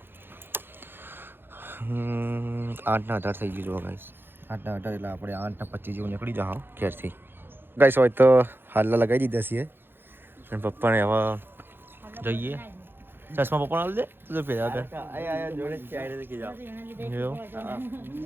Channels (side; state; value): left; late; 0.10 ms